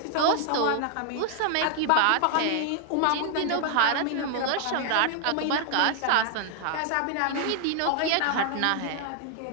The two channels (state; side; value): different; both; correlation 0.00